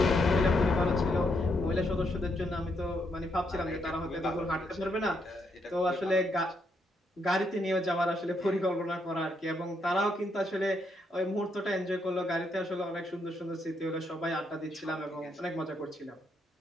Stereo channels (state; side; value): normal; both; correlation 0.77